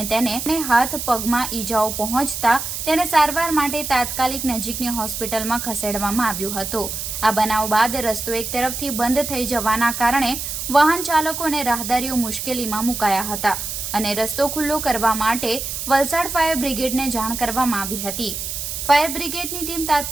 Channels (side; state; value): right; noise; hiss, 5 dB below the sound